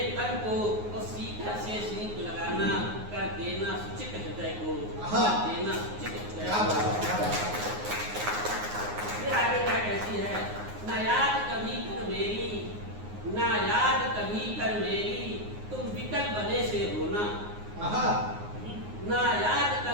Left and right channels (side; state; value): left; late; 9.6 ms